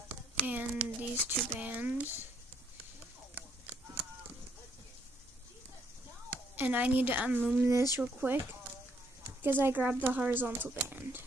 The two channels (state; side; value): normal; both; correlation 0.70